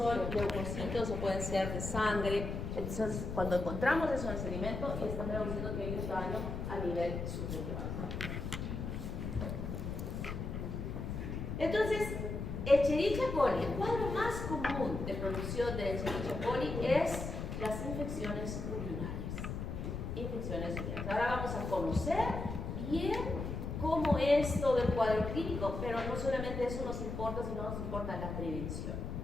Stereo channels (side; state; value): left; noise; rumble, 4 dB below the sound